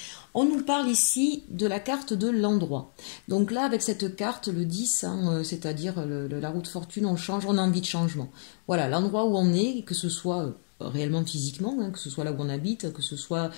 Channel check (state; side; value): silent; right; digital silence